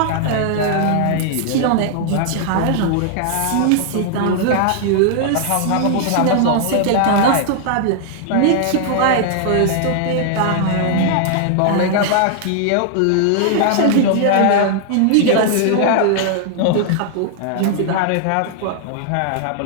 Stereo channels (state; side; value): different; both; correlation -0.01